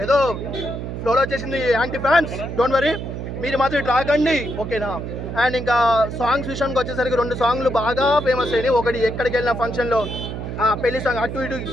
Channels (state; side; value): noise; right; hum, 6 dB below the sound